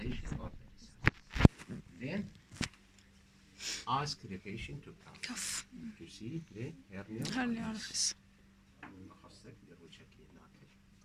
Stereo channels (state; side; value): identical; both; correlation 1.00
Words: or pulsations. Then ask the patient to cough to see the hernia orifice.